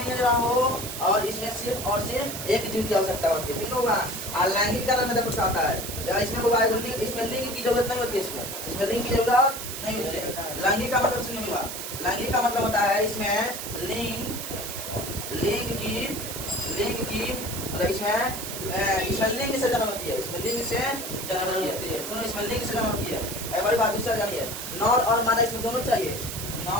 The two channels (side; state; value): right; noise; hiss, 7 dB below the sound